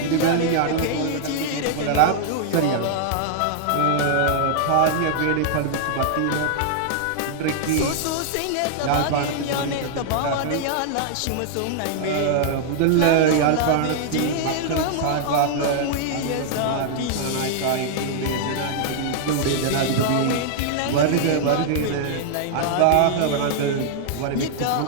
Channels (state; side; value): different; both; correlation -0.01